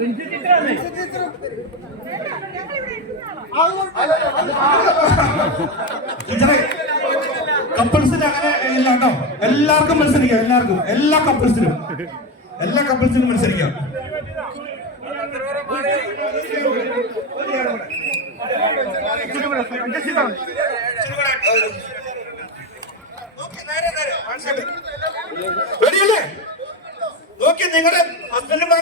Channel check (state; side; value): normal; both; correlation 0.15